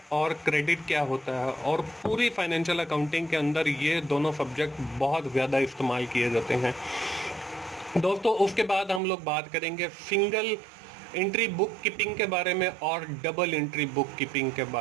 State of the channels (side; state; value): left; drops out; at 9.0 s